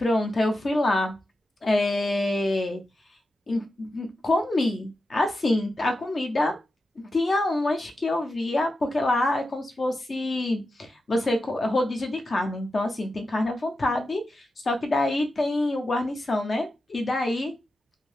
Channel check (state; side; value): normal; both; correlation 0.90